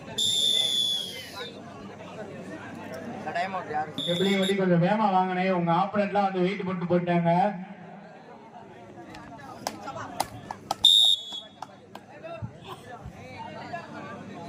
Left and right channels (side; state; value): both; identical; correlation 1.00